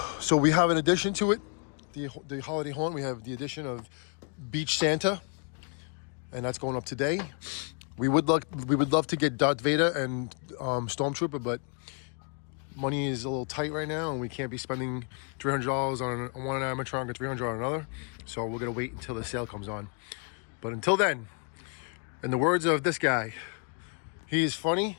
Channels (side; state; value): right; quieter; 39.6 dB